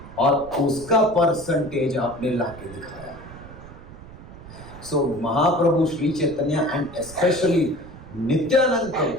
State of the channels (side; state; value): right; noise; rumble, 16 dB below the sound